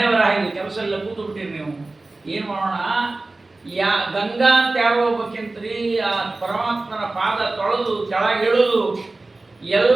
ಬರ ಆಗಿದೆ, ಕೆಲಸ ಎಲ್ಲ ಕೂತು ಬಿಟ್ಟಿರಿ ನೀವು, ಏನು ಮಾಡೋಣ? ಗಂಗಾ ಅಂತ ಯಾರೋ ಹೋಗ್ಬೇಕಂತ್ರಿ, ಆ ಪರಮಾತ್ಮನ ಪಾದ ತೊಳೆದು ಕೆಳಗಿಳಿದು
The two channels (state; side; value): quieter; left; 3.2 dB